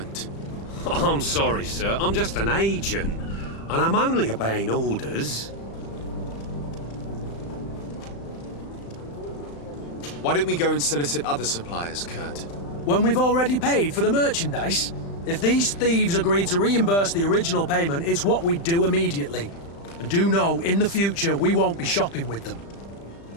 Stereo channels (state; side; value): late; right; 35 ms